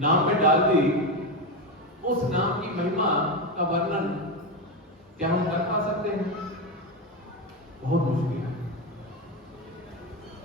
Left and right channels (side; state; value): both; normal; correlation 0.14